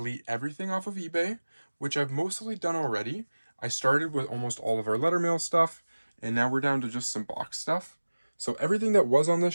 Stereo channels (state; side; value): inverted; both; correlation -1.00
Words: everything off of eBay, which I've mostly done already. I started with almost all of our letter mail stuff, and now we're down to just some box stuff. So everything that was on this